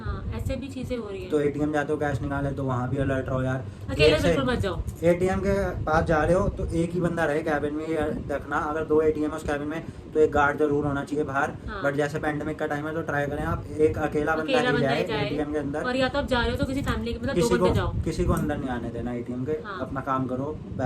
हाँ, ऐसे भी चीजें हो रही तो है। ATM जाते हो कैश निकाले तो वहाँ भी अलर्ट रहो यार। अकेले एक से- बिल्कुल मत जाओ। ATM के पास जा रहे हो तो एक ही बंदा रहे कैबिन में, ये देखना। अगर 2 ATM है उस कैबिन में तो एक गार्ड जरूर होना चाहिए बाहर। हाँ। बट जैसे पेंडेमिक का टाइम है तो ट्राई करें आप एक अकेला बंदा अकेला ही बंदा जाए ही जाए, ATM के अंदर। और या तो आप जा रहे हो तो किसी फैमिली के, मतलब 2 बंदे जाओ, किसी को अंदर नहीं आने देना ATM के। हाँ। अपना काम करो,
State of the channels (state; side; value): identical; both; correlation 1.00